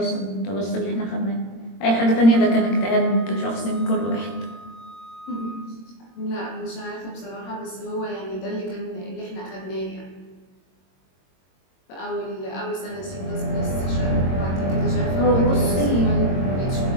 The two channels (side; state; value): right; late; 22 ms